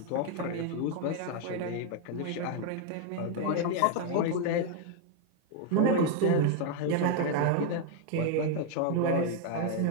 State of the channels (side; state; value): both; different; correlation 0.01